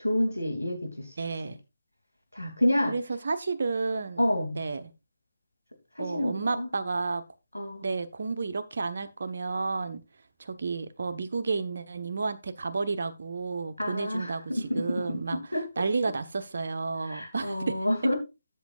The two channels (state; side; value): inverted; both; correlation -0.93